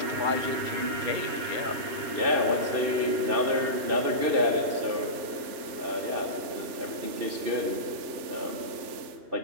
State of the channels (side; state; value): left; late; 3.4 ms